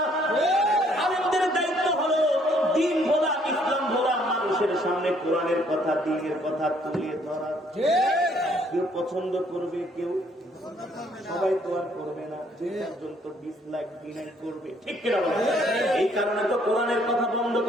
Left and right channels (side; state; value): both; normal; correlation 0.65